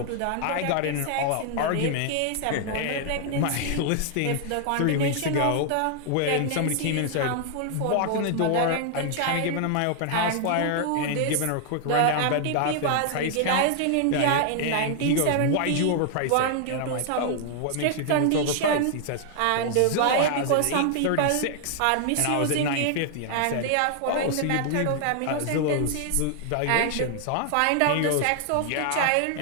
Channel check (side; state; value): both; different; correlation 0.00